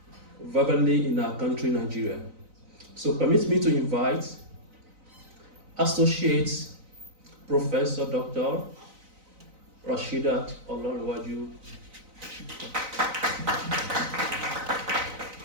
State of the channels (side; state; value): left; late; 4.0 ms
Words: verbally in our country, Nigeria. So permit me to invite Associate Professor Dr. Rashidah Olanrewaju.